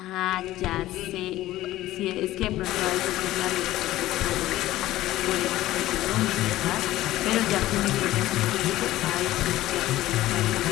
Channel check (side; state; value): right; quieter; 15.5 dB